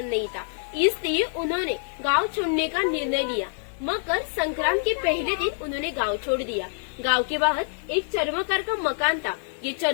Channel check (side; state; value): right; silent; digital silence